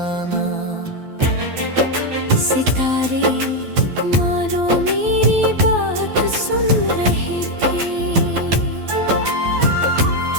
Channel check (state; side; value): late; left; 12 ms